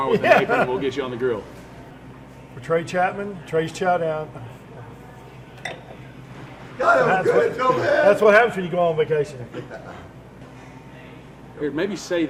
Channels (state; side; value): identical; both; correlation 1.00